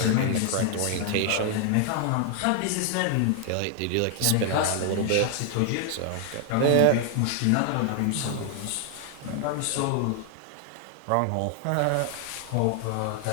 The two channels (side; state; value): both; different; correlation 0.00